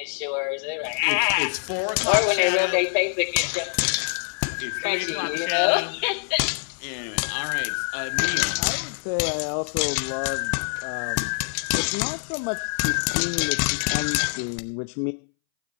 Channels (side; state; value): right; silent; 62 dB below the other